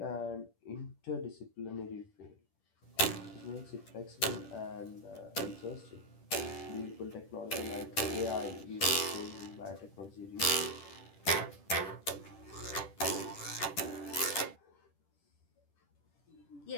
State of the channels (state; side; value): late; right; 10 ms